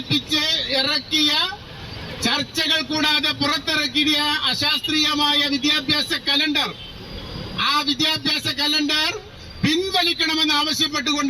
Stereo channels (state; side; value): identical; both; correlation 1.00